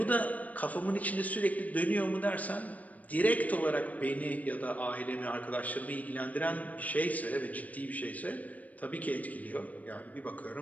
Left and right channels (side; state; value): right; late; 0.073 ms